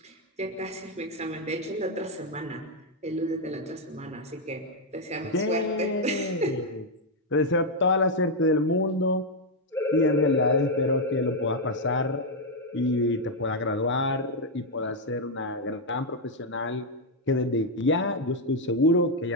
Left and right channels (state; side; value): normal; both; correlation 0.00